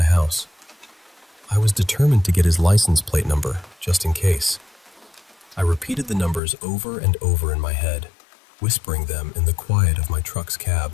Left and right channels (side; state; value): right; drops out; at 6.4 s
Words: house. I was determined to get his license plate number, just in case. I repeated the numbers over and over in my head, whispering them in the quiet of my truck's